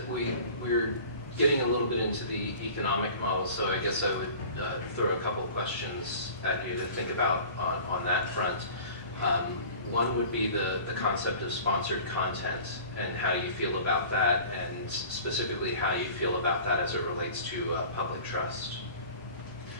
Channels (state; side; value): inverted; both; correlation -0.43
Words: we're getting a little bit into the economic model, so I guess I would throw a couple of questions at you to think about on that front. One would be the concept of sponsored content and how you feel about that, and specifically how you feel about that as it relates to public trust.